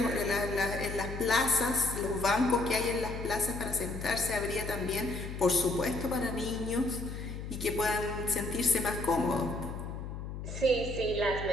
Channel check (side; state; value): left; noise; hum, 7 dB below the sound